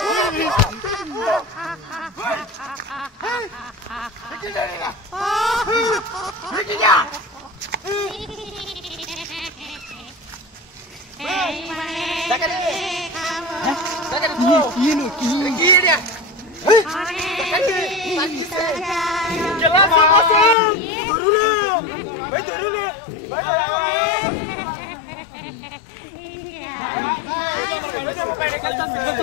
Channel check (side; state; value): right; drops out; at 20.6 s